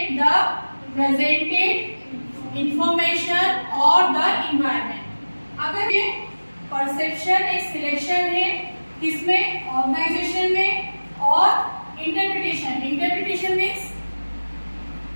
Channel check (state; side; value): inverted; both; correlation -1.00